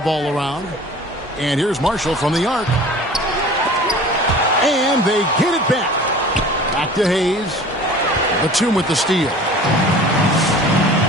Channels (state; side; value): normal; both; correlation 0.43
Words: around. And here's Marshall from the arc. And they get it back. Back to Hayes. Batum with the steal.